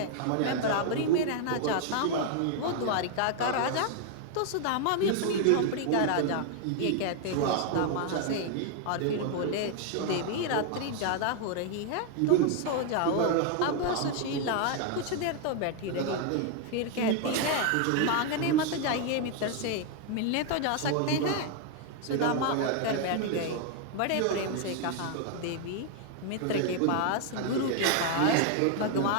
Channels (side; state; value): both; different; correlation 0.00